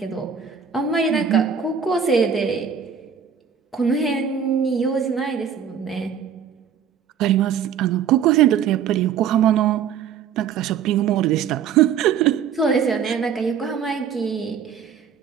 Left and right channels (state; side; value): quieter; left; 7.6 dB